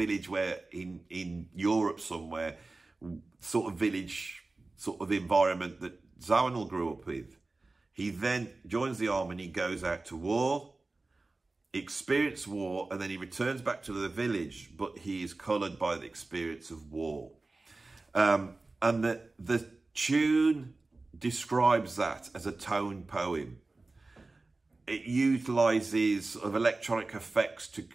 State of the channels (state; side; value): quieter; left; 3.3 dB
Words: where in Europe somewhere, sort of village, sort of environment that Zawinul grew up with. He then joins the army and he goes out to war, experiences war, and then he returns back to the village, but he is coloured by the experience of war. And the tune describes that as a tone poem. It utilises sort of electronic effects to